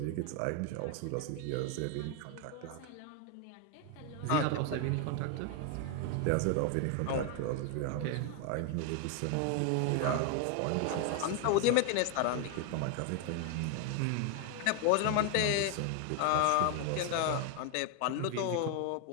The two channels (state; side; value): different; both; correlation 0.01